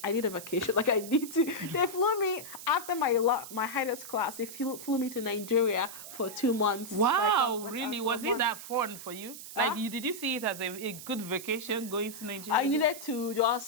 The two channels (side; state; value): right; noise; hiss, 12 dB below the sound